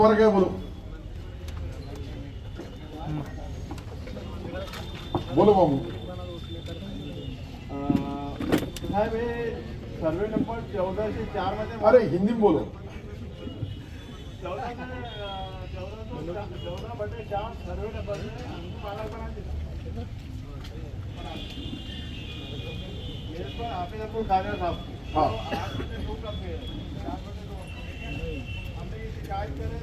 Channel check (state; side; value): identical; both; correlation 1.00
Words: काय बोलू? बोलो मामू. साहेब हे सर्वे नंबर 1404 मध्ये अरे हिंदी में बोलो. 14 बटे 4 सर्वे नंबर में माला बना दिया. मेरे को हाफिज अब्दुल कादिर साहब. हाँ. आपने दो कब गए 4 बटे 2 हमने ये शिकायत करे